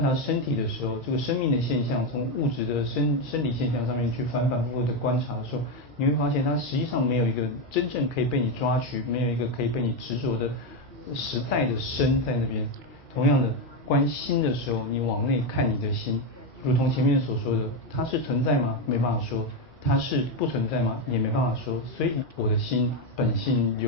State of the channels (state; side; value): normal; both; correlation 0.08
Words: 察身体的时候，这个生命的现象从物质的生理现象上面去反复的观察的时候，你会发现它实际上没有一个真正可以被你抓取，没有一个可以被你执着的实在的身在那边。同样的，观心的时候，你往内看你的心。如同前面所说的，它是存在吗？没办法说。它是不存在吗？也没办法说。所以我的心本性